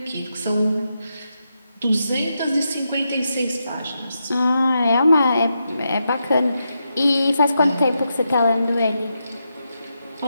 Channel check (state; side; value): inverted; both; correlation -0.85